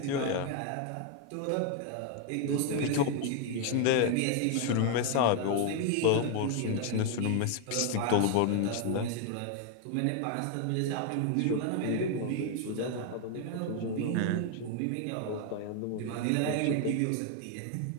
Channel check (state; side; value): different; both; correlation 0.01